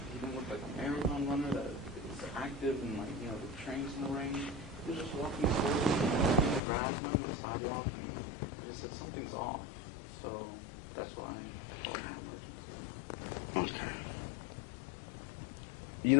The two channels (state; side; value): drops out; right; at 6.6 s